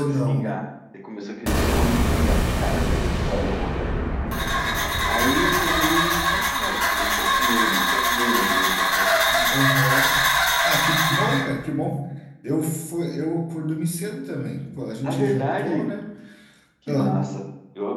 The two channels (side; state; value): both; identical; correlation 1.00